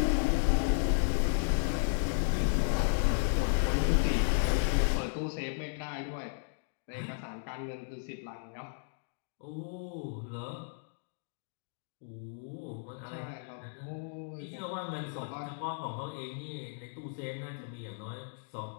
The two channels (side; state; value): right; silent; digital silence